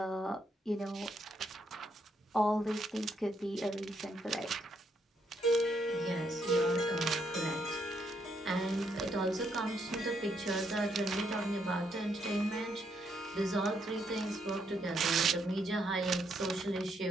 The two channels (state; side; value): normal; both; correlation 0.75